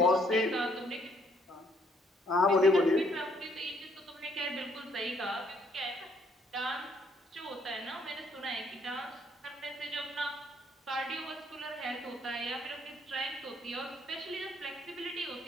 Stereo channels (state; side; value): normal; both; correlation 0.67